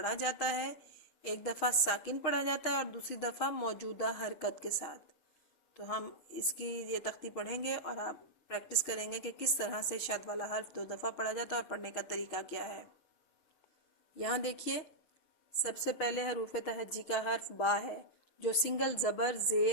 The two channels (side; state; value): right; late; 6.4 ms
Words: جاتا ہے، ایک دفعہ ساکن پڑھا جاتا ہے اور دوسری دفعہ موجودہ حرکت کے ساتھ۔ تو ہم اس کی یہ تختی پڑھیں گے اور آپ پریکٹس کریں گے کہ کس طرح سے شد والا حرف 2 دفعہ پڑھا جاتا ہے اور پڑھنے کا طریقہ کیا ہے۔ یہاں دیکھیے، سب سے پہلے حروف تہجی کا حرف با ہے، جو سنگل زبر